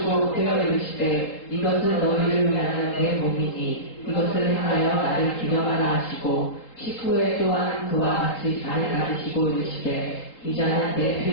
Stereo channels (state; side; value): late; right; 3.7 ms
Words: 되어 이르시되 이것은 너희를 위하는 내 몸이니 이것을 행하여 나를 기념하라 하시고 식후에 또한 그와 같이 잔을 가지시고 이르시되 이 잔은 내